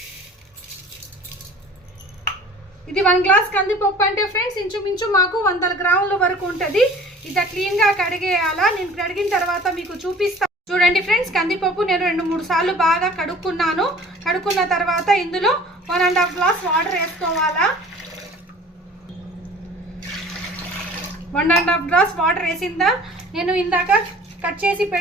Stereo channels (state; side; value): normal; both; correlation 0.47